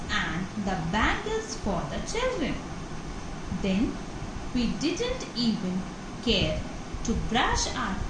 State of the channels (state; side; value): identical; both; correlation 1.00